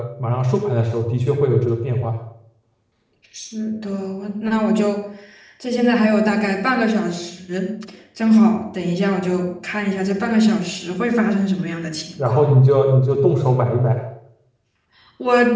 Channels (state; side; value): identical; both; correlation 1.00